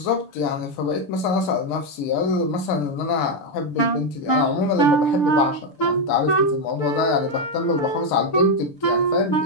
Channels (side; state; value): right; late; 7.2 ms